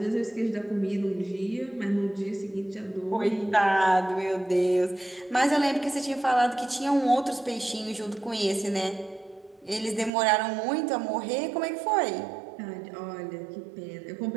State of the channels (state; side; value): drops out; left; at 10.1 s